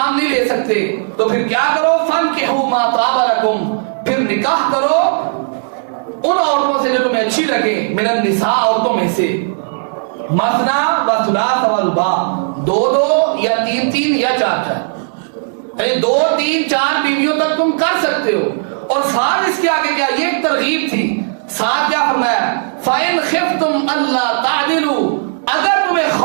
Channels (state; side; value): silent; left; digital silence